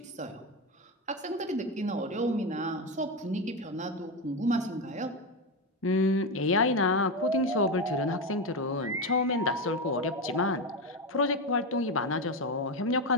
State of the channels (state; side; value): normal; both; correlation 0.13